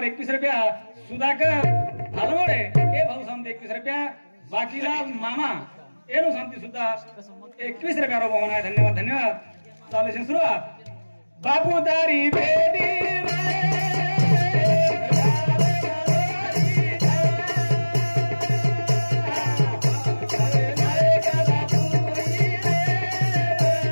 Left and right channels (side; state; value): both; inverted; correlation -1.00